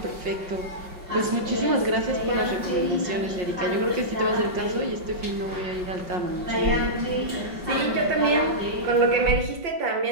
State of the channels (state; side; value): late; left; 5.2 ms